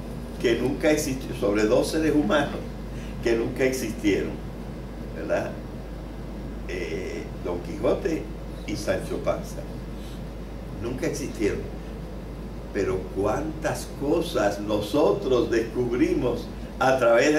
que nunca existió, sobre dos seres humanos que nunca existieron, ¿verdad? Don Quijote y Sancho Panza. Nunca existieron. Pero cuántas cosas nosotros descubrimos a través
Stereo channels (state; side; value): identical; both; correlation 1.00